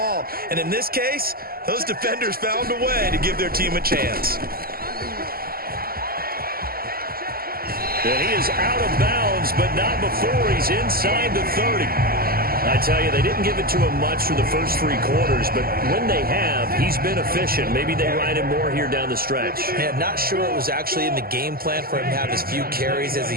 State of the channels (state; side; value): late; left; 0.43 ms